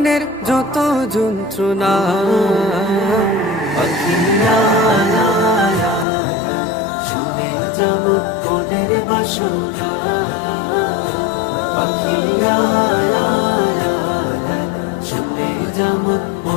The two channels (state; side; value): drops out; right; at 6.1 s